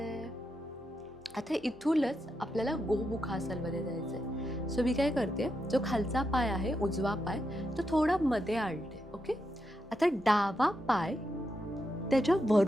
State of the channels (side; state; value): both; normal; correlation 0.84